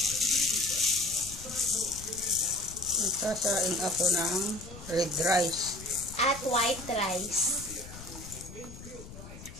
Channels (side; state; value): left; noise; rumble, 14 dB below the sound